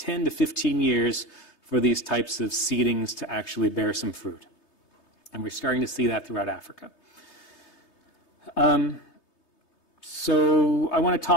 to 15 years for these types of seedings to actually bear some fruit. And we're starting to see that throughout Africa. So I want to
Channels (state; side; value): late; right; 3.2 ms